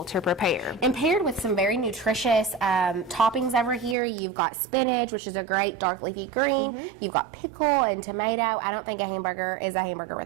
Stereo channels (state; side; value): drops out; left; at 4.0 s